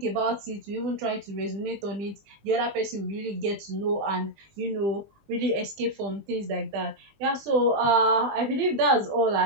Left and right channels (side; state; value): left; late; 20 ms